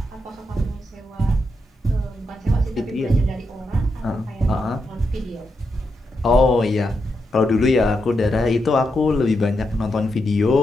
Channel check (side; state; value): both; normal; correlation 0.84